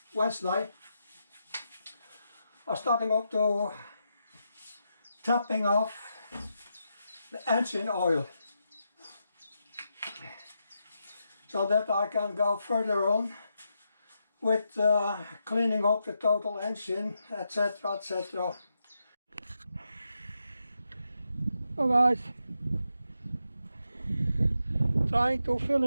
Wednesday, I'm starting up to topping off the engine oil so that I can go further on with cleaning up the total engine, etc, etc. So guys, trying to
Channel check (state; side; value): inverted; both; correlation -0.84